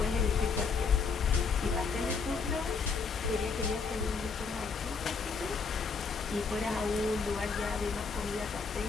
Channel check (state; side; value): quieter; right; 5.1 dB